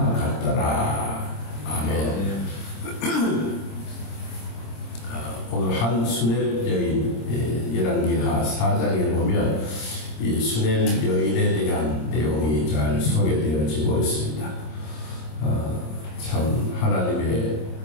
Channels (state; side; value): late; right; 26 ms